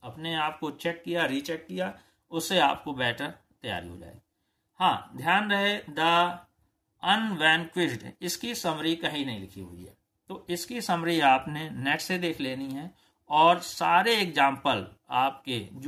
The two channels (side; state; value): both; identical; correlation 1.00